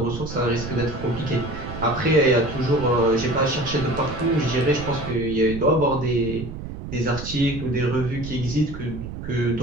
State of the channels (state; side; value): noise; right; rumble, 9 dB below the sound